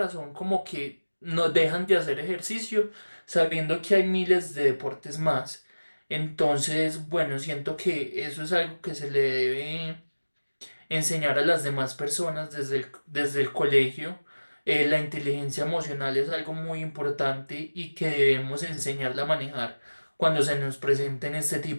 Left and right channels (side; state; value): both; inverted; correlation -1.00